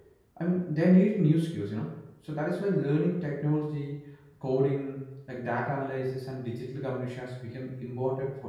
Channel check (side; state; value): both; identical; correlation 1.00